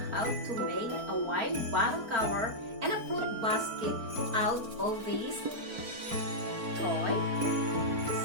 how to make a wine bottle cover and a fruit basket out of these toy,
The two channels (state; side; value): late; left; 4.4 ms